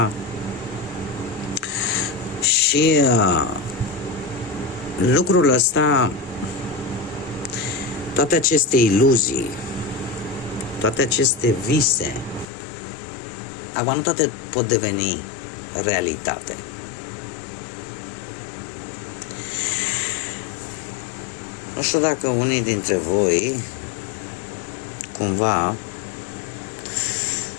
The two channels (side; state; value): right; drops out; at 12.5 s